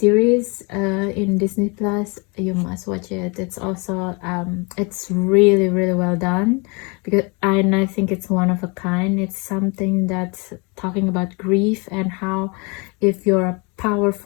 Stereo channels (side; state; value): right; quieter; 30.5 dB